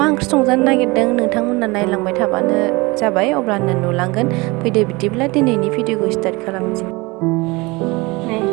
ओंख्रि संजानो नागिरदों नोंथांमोना नायलांबाय थाबानो जाबाय, अब्लानो नुलांगोन। फैदो बिदिब्ला दिनैनि भिडिअखौ स्टार्ट खालामनोसै।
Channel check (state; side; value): quieter; left; 24.3 dB